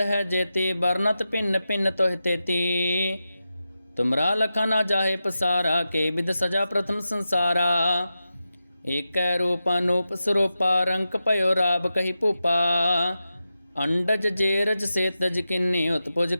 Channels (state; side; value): inverted; both; correlation -0.91